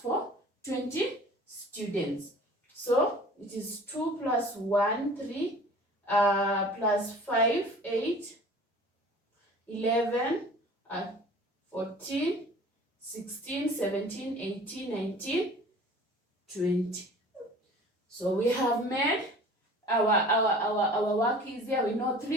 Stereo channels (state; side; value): normal; both; correlation 0.46